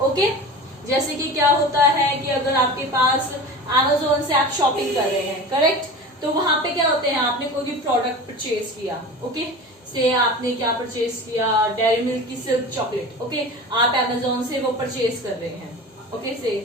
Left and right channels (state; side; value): normal; both; correlation 0.33